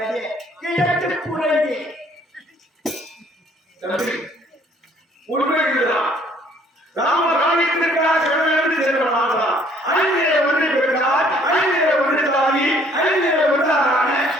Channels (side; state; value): both; normal; correlation 0.60